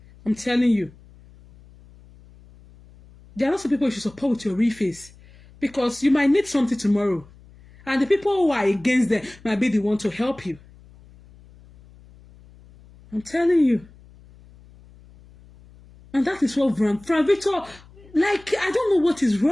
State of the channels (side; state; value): left; noise; hum, 25 dB below the sound